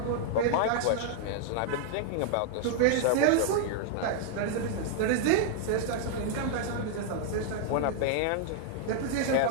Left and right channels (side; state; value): both; different; correlation 0.00